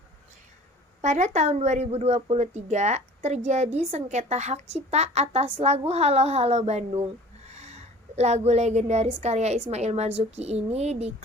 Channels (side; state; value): both; normal; correlation 0.46